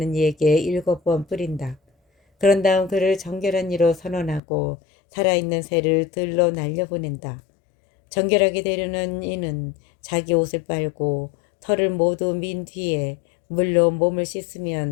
이에게 7번 뿌린다. 그런 다음 그를 정결한 이로 선언하고 살아있는 새를 들로 날려보낸다. 정결하게 되려는 이는 자기 옷을 빨고 털을 모두 민 뒤에 물로 몸을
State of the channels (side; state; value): right; drops out; at 4.4 s